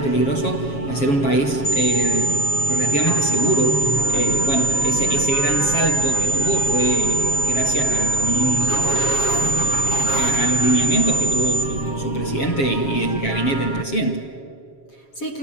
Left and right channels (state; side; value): late; right; 7.3 ms